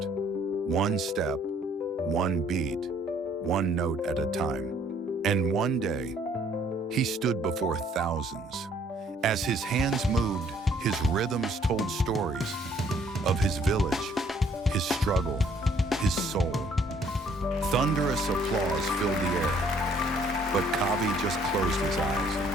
One step, one beat, one note at a time. And one day, he stood before thousands. As his hands moved, his rhythms told stories of his village, his struggle, his soul. Thunderous applause filled the air, but Kavi just closed his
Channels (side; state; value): both; normal; correlation 0.62